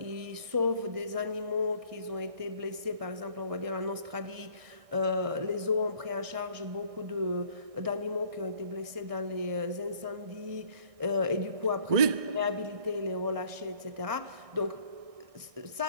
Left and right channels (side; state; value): left; late; 1.6 ms